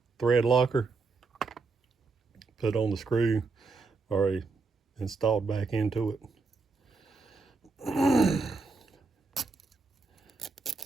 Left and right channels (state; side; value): quieter; left; 4.1 dB